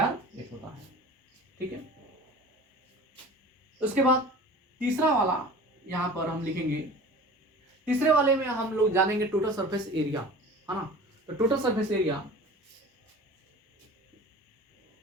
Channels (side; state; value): both; normal; correlation 0.40